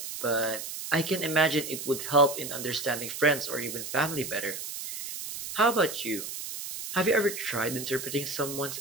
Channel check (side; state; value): right; noise; hiss, 7 dB below the sound